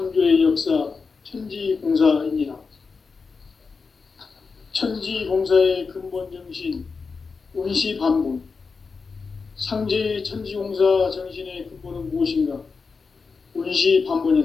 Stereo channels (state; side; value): quieter; right; 4.8 dB